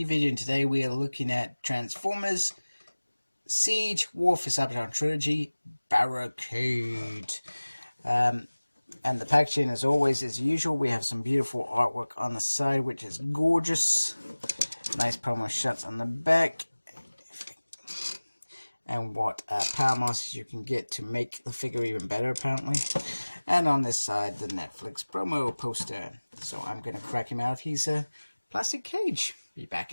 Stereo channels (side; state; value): both; inverted; correlation -1.00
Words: video, and today we are looking at Transformers Siege War for Cybertron Trilogy Barricade. And the packaging, as always, as usual, we have some beautiful artwork on the side, which is gorgeous. Nice promo shots on the back. And what power masters you can get to make the figure even better, apparently. And on this side, the Netflix promo poster. So I'm going to crack him out if he's a plastic cage. Be back